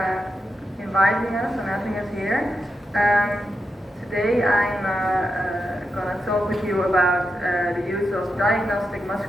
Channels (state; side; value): normal; both; correlation 0.87